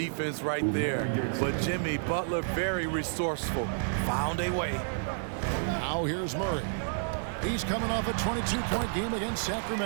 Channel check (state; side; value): silent; left; digital silence